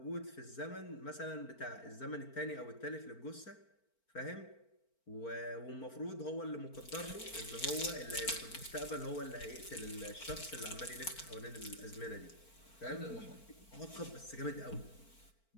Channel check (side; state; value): right; late; 4.4 ms